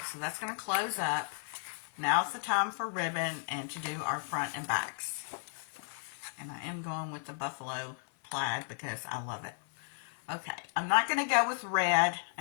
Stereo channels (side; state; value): right; silent; 55 dB below the other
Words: so that's going to close up. Now it's the time for ribbon and to do our front and backs. And I am going with the buffalo plaid because I love it. Okay, I'm not going to go with red,